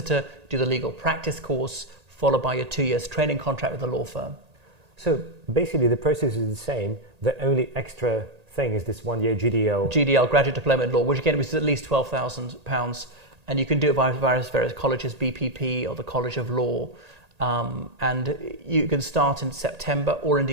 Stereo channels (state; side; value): late; left; 1.8 ms